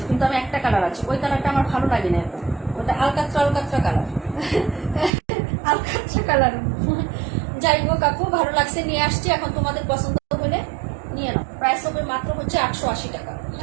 কিন্তু আমি একটা কালার আছে, ওই কালারটা আমার ভালো লাগে না এখন, ওটা আলকাত্রা কালার আলকাত্রা কালার। যাই হোক আপু, ভালো লাগছে নিয়ে আসছি, এখন তোমাদের পছন্দ হলে নিয়ে নাও। প্রাইস হবে মাত্র হচ্ছে 880 টাকা,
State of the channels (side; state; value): left; drops out; at 5.1 s